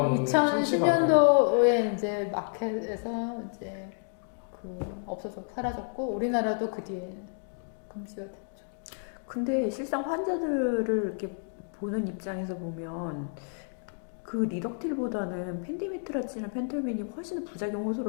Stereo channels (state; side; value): silent; right; digital silence